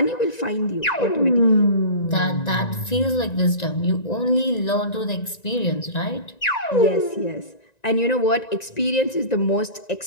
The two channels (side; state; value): right; late; 1.9 ms